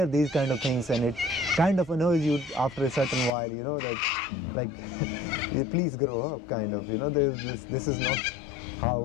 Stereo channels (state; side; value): drops out; right; at 3.3 s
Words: these kind of things, and it kind of annoys you after a certain while, that like please grow up, kind of, this is not how